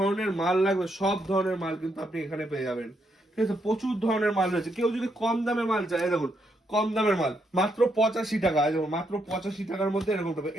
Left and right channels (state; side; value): normal; both; correlation 0.77